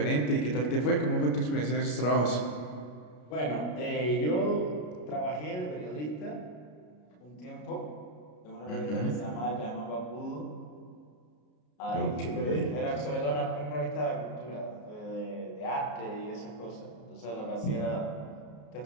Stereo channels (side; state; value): right; late; 33 ms